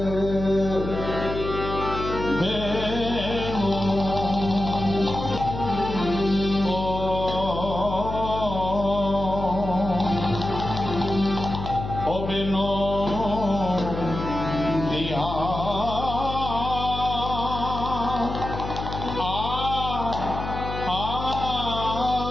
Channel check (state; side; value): noise; left; hum, 6 dB below the sound